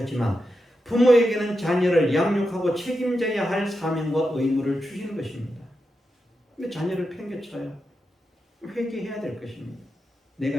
부모에게는 자녀를 양육하고 책임져야 할 사명과 의무를 주시는 것입니다. 근데 자녀를 팽개쳐요. 회개해야 될 것입니다.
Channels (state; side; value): normal; both; correlation 0.88